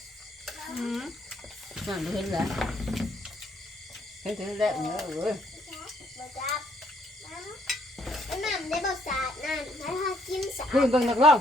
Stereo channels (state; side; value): normal; both; correlation 0.68